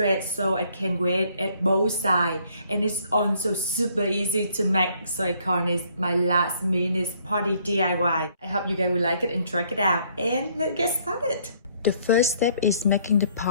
so I can wear it at both sides, and it's also super easy to make, so I call it my last minute party DIY. I hope you guys will like it and try it out, and let's get started. The first step is making the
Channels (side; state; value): both; inverted; correlation -0.65